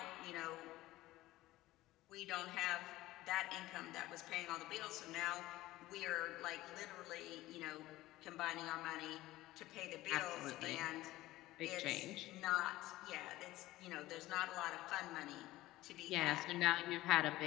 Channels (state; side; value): quieter; right; 17.0 dB